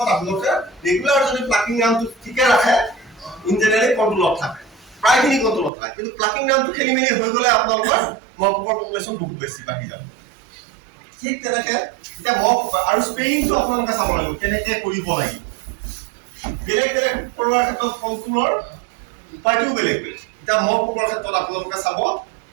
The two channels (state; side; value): drops out; left; at 5.7 s